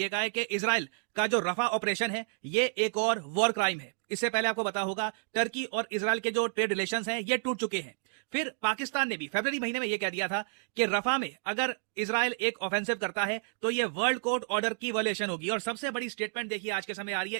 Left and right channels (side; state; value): left; silent; digital silence